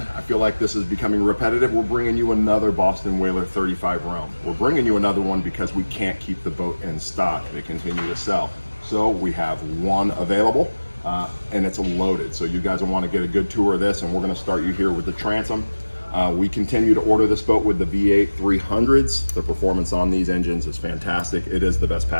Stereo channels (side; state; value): both; inverted; correlation -1.00